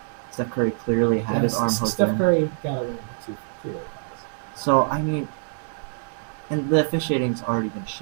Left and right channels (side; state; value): left; silent; 62 dB below the other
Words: Steph Curry clearly had his arm hooked in. Steph Curry got away with two So I mean, and the officiating's already been